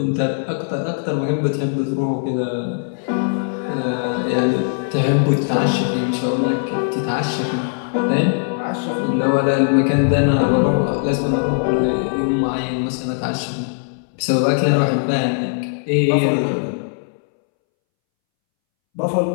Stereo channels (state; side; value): silent; right; 65 dB below the other